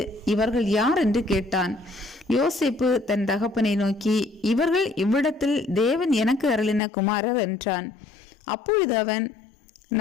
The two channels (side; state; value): right; drops out; at 6.8 s